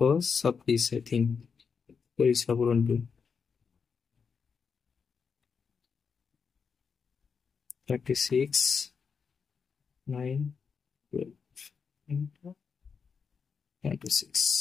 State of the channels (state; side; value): quieter; right; 5.8 dB